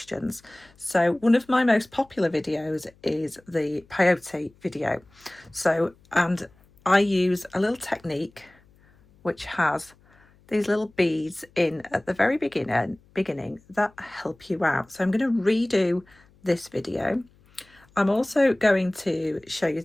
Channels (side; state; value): left; noise; hum, 30 dB below the sound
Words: So one of my most popular videos is the Peyote video. And I use a little technique which has these little beads in at the very beginning that help you out. So I'm going to redo this video. I'm also going to show you